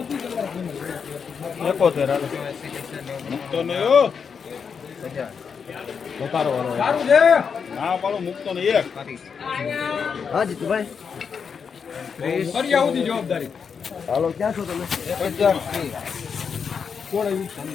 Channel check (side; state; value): right; quieter; 6.3 dB